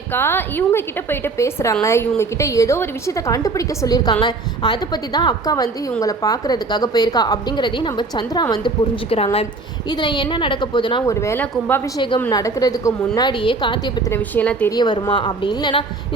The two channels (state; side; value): quieter; left; 3.7 dB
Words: இவங்க கிட்ட போயிட்டு பேசுகிறாங்க, இவங்க கிட்ட ஏதோ ஒரு விஷயத்தை கண்டுபிடிக்க சொல்லியிருக்காங்க, அதை பற்றி தான் அக்கா வந்து இவங்களை பார்க்குறதுக்காக போயிருக்கா அப்படிங்கிறதையும் நம்ம சந்திரா வந்து புரிஞ்சுக்கிறாங்க. இதில் என்ன நடக்க போகுதுன்னா, ஒரு வேளை கும்பாபிஷேகம் நடக்கிறதுக்கு முன்னாடியே கார்த்தியை பற்றின விஷயம்லாம் தெரிய வருமா, அப்படி இல்லைன்னா